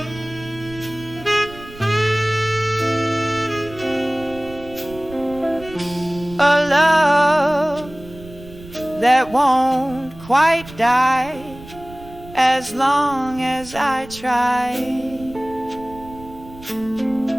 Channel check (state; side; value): noise; right; rumble, 18 dB below the sound